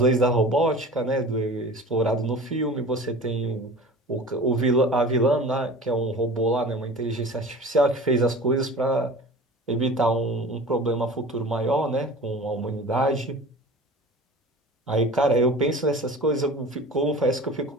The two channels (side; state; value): both; normal; correlation 0.38